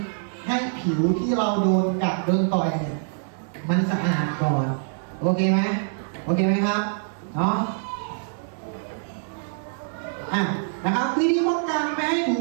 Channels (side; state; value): left; silent; digital silence